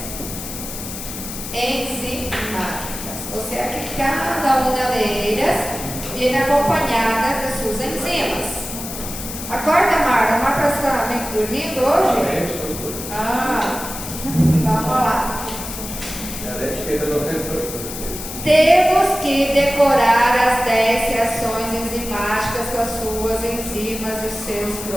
enzimáticas, o sea que cada una de ellas viene acompanhada de suas enzimas. Acorda, Marta. Marta está dormindo hoje? Vamos lá. Temos que decorar as 10 reações enzimáticas com as suas enzimas e os seus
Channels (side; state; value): left; noise; hiss, 9 dB below the sound